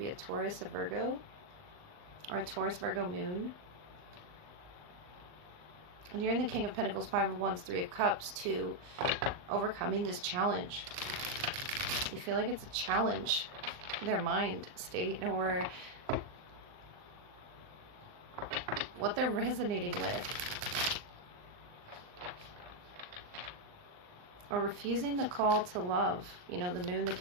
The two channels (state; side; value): late; left; 39 ms